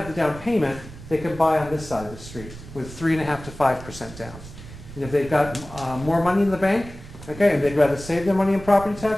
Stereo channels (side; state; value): right; noise; rumble, 15 dB below the sound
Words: the down payment, they can buy on this side of the street with 3.5% to 5% down. And if they've got more money in the bank, okay, and they'd rather save their money in property